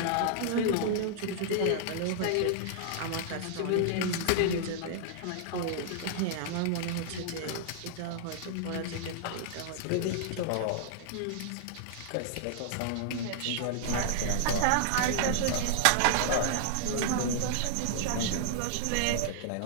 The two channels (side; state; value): both; different; correlation -0.01